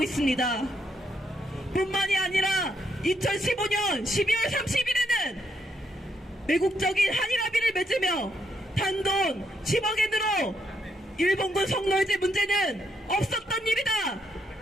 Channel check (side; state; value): both; normal; correlation 0.76